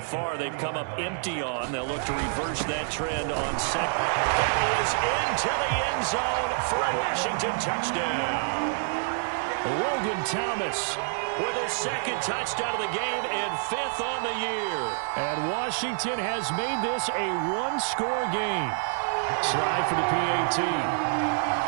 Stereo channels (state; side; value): silent; left; 60 dB below the other